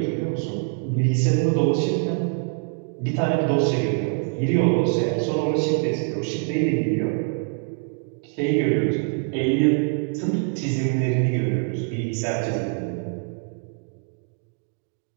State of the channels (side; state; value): left; quieter; 36.1 dB